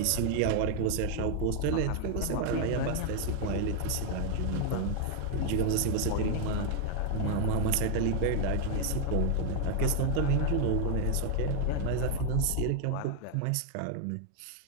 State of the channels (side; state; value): both; different; correlation 0.00